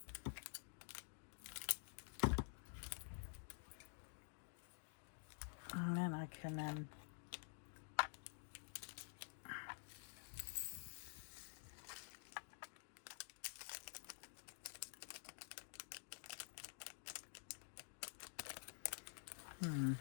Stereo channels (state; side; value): silent; right; digital silence